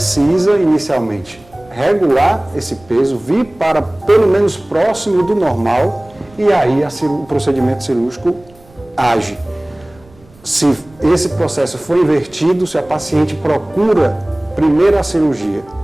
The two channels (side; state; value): right; noise; rumble, 27 dB below the sound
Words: inicialmente regular esse peso, vir para pelo menos próximo do normal e aí o procedimento cirúrgico age. Se esse processo for invertido, se a paciente procura primeiro a cirurgia